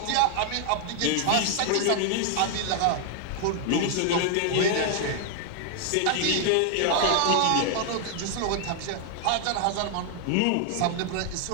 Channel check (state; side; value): different; both; correlation 0.00